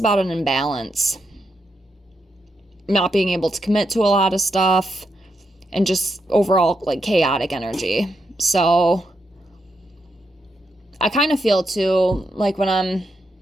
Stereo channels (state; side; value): normal; both; correlation 0.82